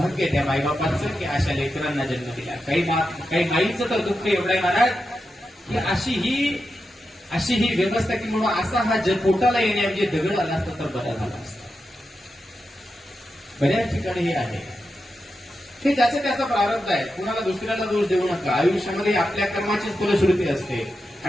त्या माईबापाचं की अशा लेकरांना जन्म दिला. काही माईचं तर दुःख एवढं आहे महाराज की अशी ही व्यवस्था की म्हणून असा हा पोटाला येण्याऐवजी दगड आला असता तर बरा झाला असता. बऱ्याच ठिकाणी हे आहे. हे ज्याचा त्याचा प्रारब्ध आहे, कुणाला दुसऱ्याला दोष देऊ नका. आयुष्यामध्ये आपल्या कर्माचीच फलश्रुती असते.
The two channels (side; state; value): both; normal; correlation 0.89